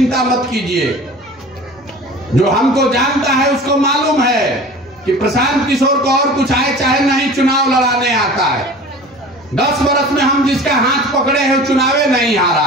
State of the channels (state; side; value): normal; both; correlation 0.40